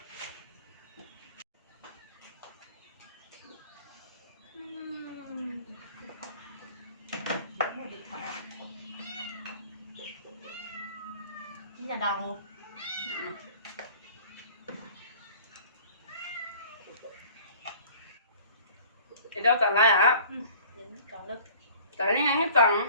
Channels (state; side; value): inverted; both; correlation -0.48